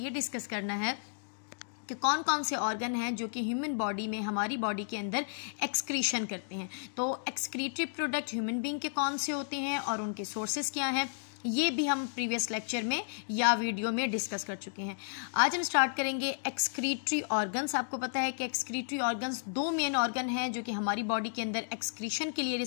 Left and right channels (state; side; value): silent; right; digital silence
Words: डिस्कस करना है कि कौन कौन से ऑर्गन हैं जो कि ह्यूमन बॉडी में, हमारी बॉडी के अंदर एक्सक्रीशन करते हैं। तो एक्सक्रीटरी प्रोडक्ट ह्यूमन बीइंग के कौन से होते हैं और उनके सोर्सेज क्या हैं, ये भी हम प्रीवियस लेक्चर में या वीडियो में डिस्कस कर चुके हैं। आज हम स्टार्ट करेंगे एक्सक्रीटरी ऑर्गन्स। आपको पता है कि एक्सक्रीटरी ऑर्गन्स दो मेन ऑर्गन हैं जो कि हमारी बॉडी के अंदर एक्सक्रीशन के लिए